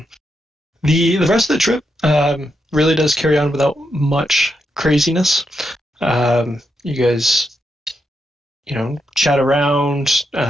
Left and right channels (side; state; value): both; normal; correlation 0.83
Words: The rest of the trip really does carry on without much craziness. You guys, chat around,